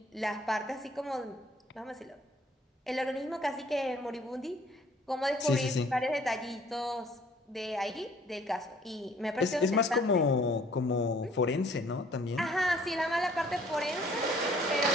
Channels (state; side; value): normal; both; correlation 0.58